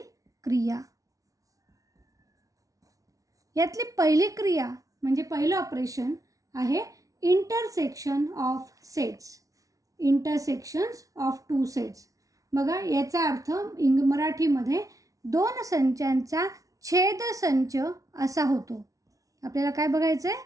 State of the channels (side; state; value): left; late; 0.17 ms